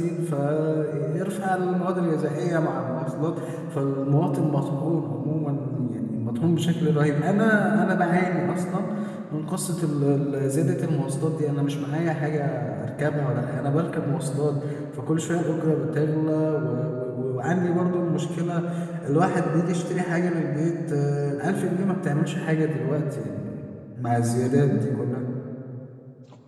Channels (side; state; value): both; identical; correlation 1.00